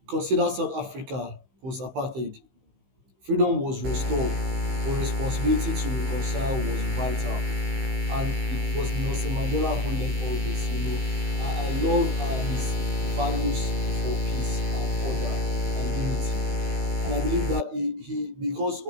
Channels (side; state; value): left; late; 15 ms